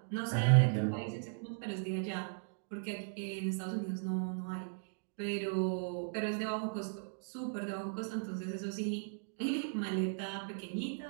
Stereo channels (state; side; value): silent; left; digital silence